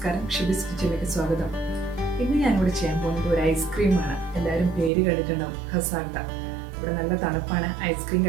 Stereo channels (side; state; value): left; drops out; at 4.9 s